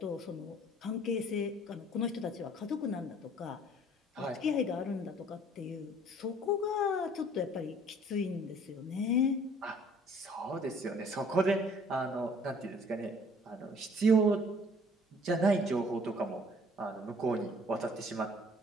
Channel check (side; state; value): both; normal; correlation 0.55